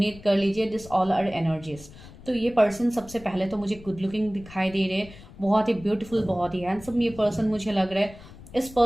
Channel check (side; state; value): left; noise; rumble, 18 dB below the sound